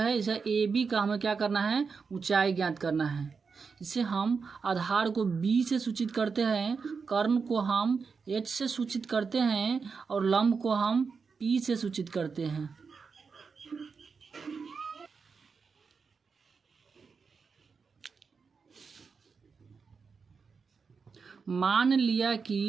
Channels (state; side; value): quieter; left; 5.3 dB